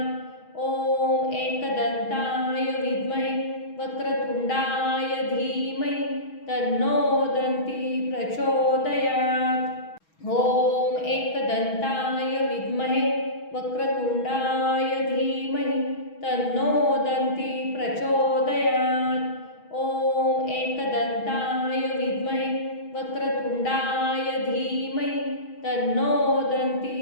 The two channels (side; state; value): right; late; 6.2 ms